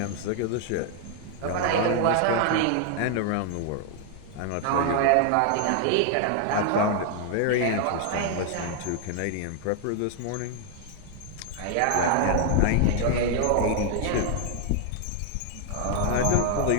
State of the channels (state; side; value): different; both; correlation 0.00